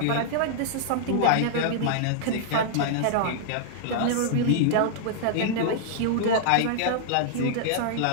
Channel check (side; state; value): both; different; correlation -0.01